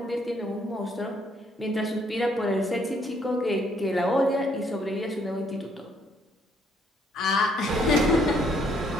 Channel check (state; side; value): normal; both; correlation 0.68